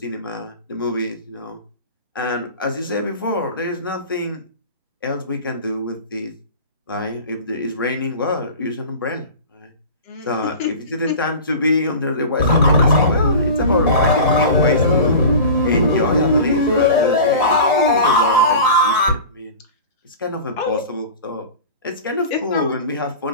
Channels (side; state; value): both; inverted; correlation -0.35